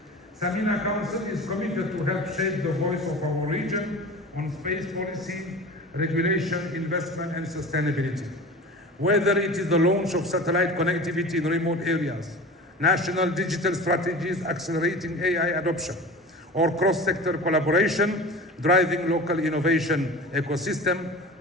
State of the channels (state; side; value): normal; both; correlation 0.35